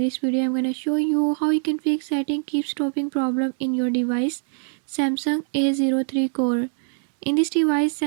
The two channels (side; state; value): left; silent; digital silence